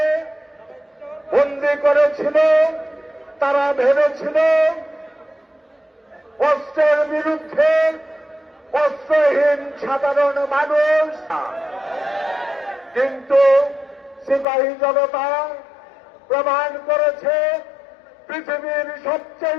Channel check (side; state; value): right; drops out; at 14.5 s